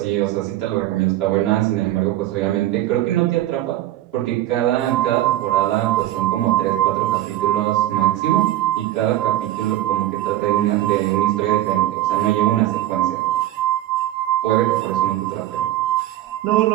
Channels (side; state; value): left; quieter; 14.1 dB